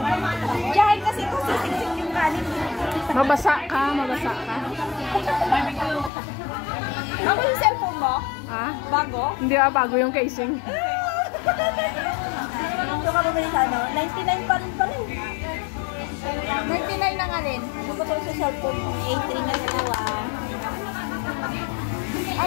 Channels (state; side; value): drops out; right; at 6.1 s